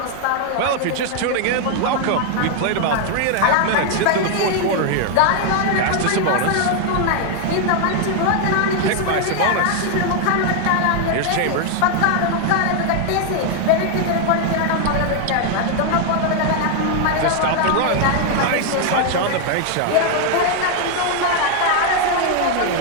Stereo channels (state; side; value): different; both; correlation 0.00